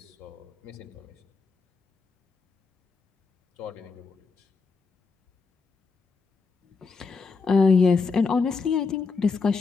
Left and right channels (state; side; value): quieter; right; 4.6 dB